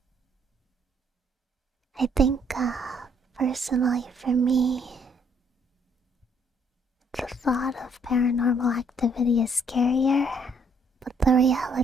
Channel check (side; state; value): both; normal; correlation 0.67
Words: I think, personally for me, the thought of paranormal activity is scarier, but the